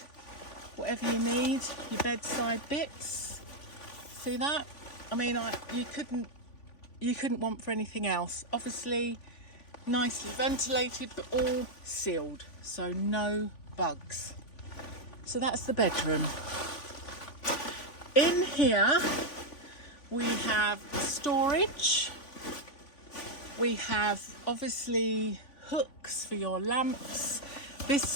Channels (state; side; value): late; right; 3.5 ms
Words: whatever you need, your bedside bits. See that? I mean, you couldn't want for anything else. Obviously nicely ventilated but all sealed, so no bugs. So that's the bedroom. In here we have storage. We have obviously hooks for your lamps. This